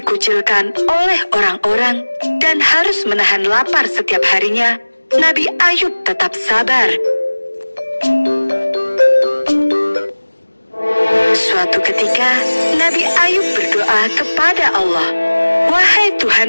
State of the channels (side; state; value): both; inverted; correlation -1.00